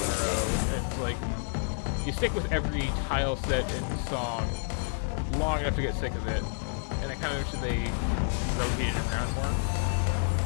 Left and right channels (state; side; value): silent; right; digital silence